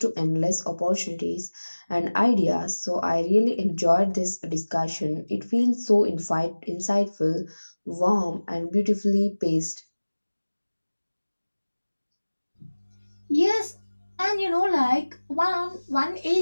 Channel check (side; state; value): both; inverted; correlation -1.00